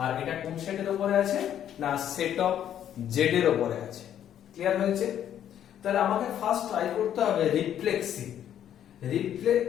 আর এটা কোন সেটের উপরে আছে না সেট অফ z এর উপরে আছে। ক্লিয়ার হয়েছে? তাহলে আমাকে ফার্স্ট ট্রাই করতে হবে রিফ্লেক্সিভ।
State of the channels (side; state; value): right; quieter; 10.3 dB